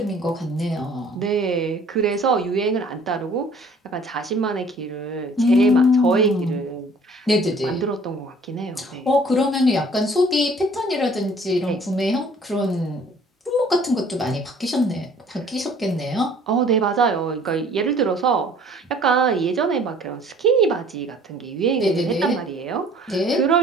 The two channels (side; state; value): both; normal; correlation 0.54